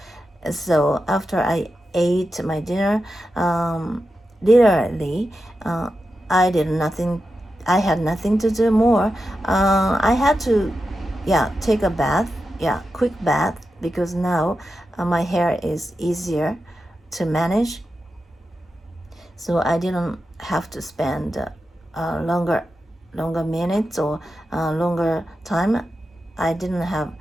So after I ate my dinner, literally, I had nothing to do more. I had to, take a bath, quick bath, because now my hair is easier to manage. So I didn't have to spend longer minutes or longer time. I didn't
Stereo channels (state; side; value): normal; both; correlation 0.89